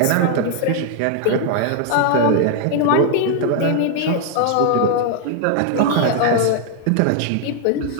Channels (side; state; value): both; different; correlation 0.00